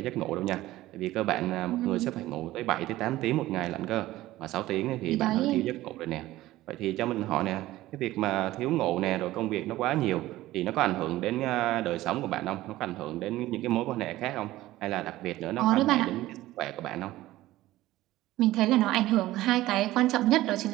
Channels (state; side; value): quieter; left; 16.3 dB